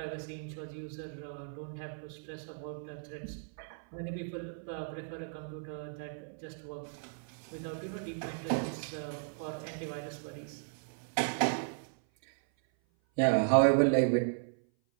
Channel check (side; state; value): left; silent; 54 dB below the other